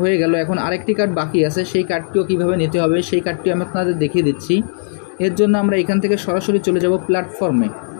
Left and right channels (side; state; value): right; silent; 68 dB below the other